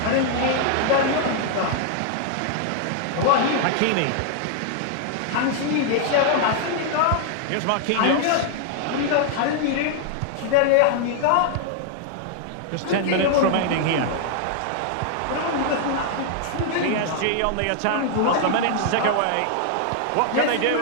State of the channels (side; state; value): both; different; correlation 0.00